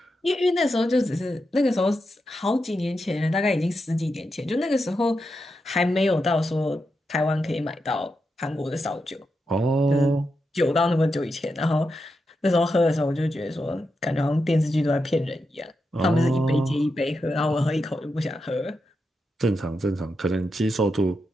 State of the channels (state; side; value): normal; both; correlation 0.86